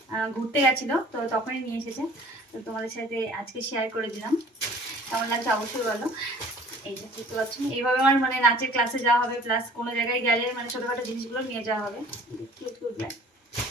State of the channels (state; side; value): normal; both; correlation 0.49